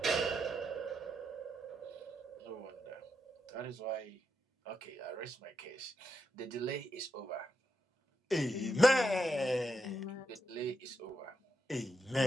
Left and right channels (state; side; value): normal; both; correlation 0.83